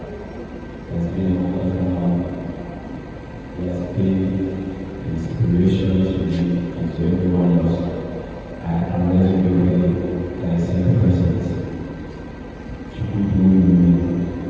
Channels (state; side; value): identical; both; correlation 1.00